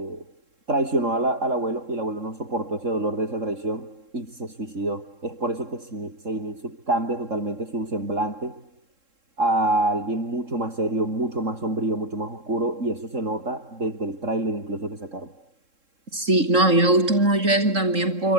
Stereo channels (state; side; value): late; left; 3.7 ms